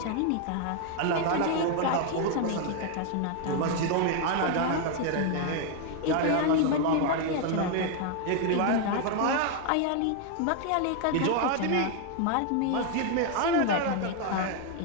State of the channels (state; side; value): different; both; correlation 0.01